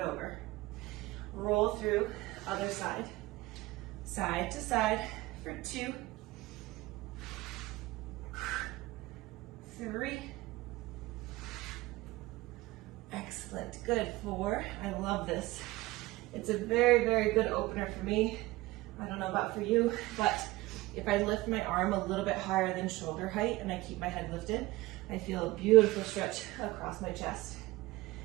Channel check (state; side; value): quieter; left; 19.6 dB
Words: Roll through, other side. Side to side for 2, 3. Excellent, good. 4, I love this. It's a very, very good opener for me. I don't know about for you, but if I lift my arm a little bit higher than shoulder height and I keep my head lifted, I feel a beautiful stretch across my chest.